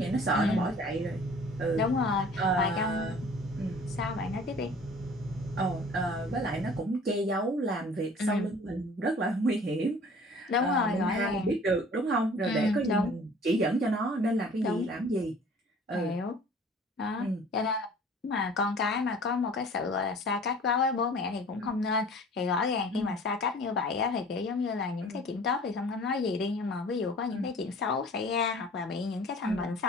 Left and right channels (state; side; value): normal; both; correlation 0.48